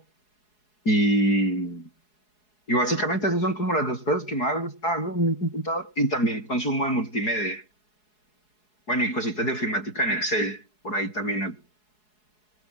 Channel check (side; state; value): right; late; 4.7 ms